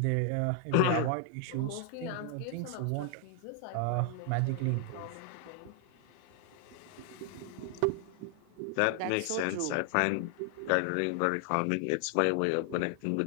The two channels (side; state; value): both; different; correlation 0.00